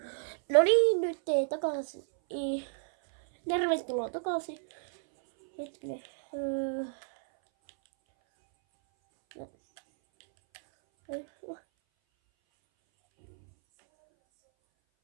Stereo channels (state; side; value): silent; left; 57 dB below the other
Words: No niin, nyt takaisin. Tervetuloa takaisin. Hetkinen.